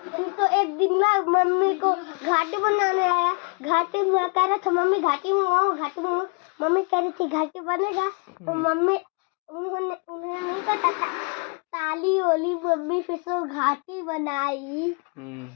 तो एक दिन ना मम्मी को घाटी बनाने आया, घाटी में कह रहा था मम्मी घाटी मंगाओ, घाटी मंगाओ। मम्मी कह रही थी घाटी बनेगा, तो मम्मी उन्होंने नहीं पता था, ताली ओली मम्मी फिर से घाटी बनाई।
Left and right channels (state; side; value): quieter; right; 33.1 dB